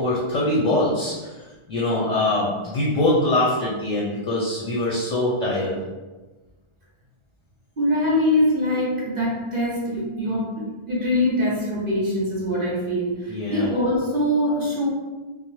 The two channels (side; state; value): left; late; 1.4 ms